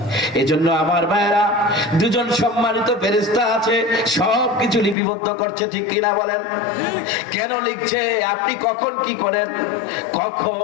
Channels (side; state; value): right; drops out; at 5.0 s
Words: এজন্য আমার ভাইরা, দুজন সম্মানিত ফেরেশতা আছে, সব কিছু লিপিবদ্ধ করছে, ঠিক কিনা বলেন? কেন লিখছে? আপনি কখন কি করেন,